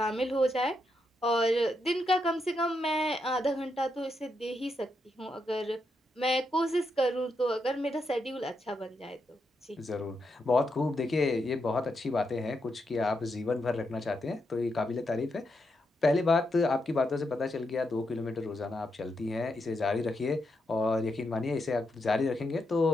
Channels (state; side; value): normal; both; correlation 0.82